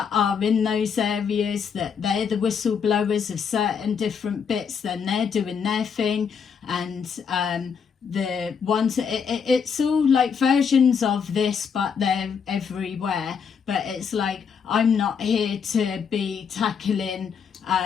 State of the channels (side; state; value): right; quieter; 6.6 dB